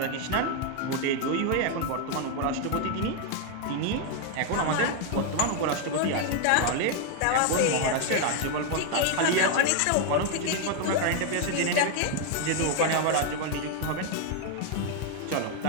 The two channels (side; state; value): both; different; correlation 0.00